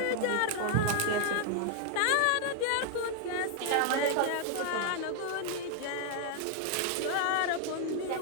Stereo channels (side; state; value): both; different; correlation 0.00